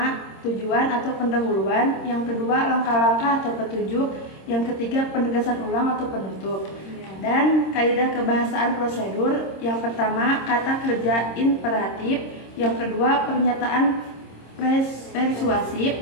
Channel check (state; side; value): late; right; 26 ms